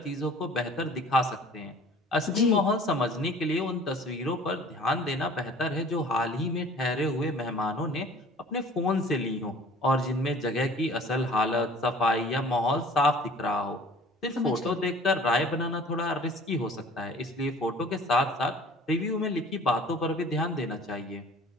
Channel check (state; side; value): normal; both; correlation 0.48